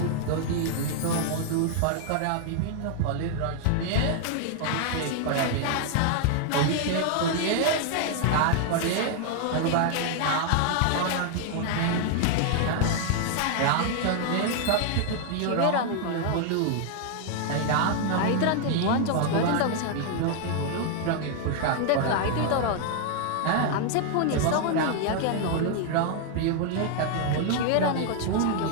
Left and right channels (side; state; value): both; different; correlation 0.00